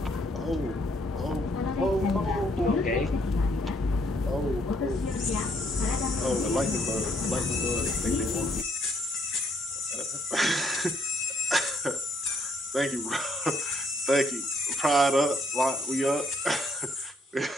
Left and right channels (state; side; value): normal; both; correlation 0.69